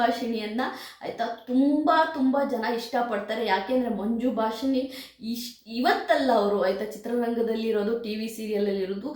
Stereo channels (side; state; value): both; identical; correlation 1.00